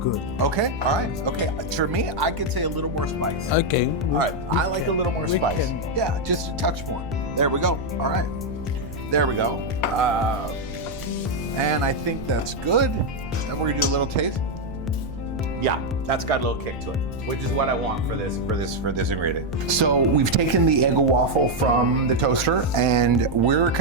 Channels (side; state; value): right; noise; rumble, 14 dB below the sound